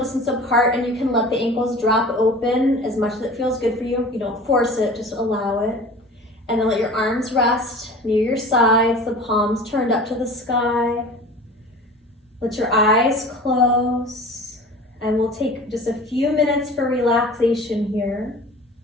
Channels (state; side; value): normal; both; correlation 0.40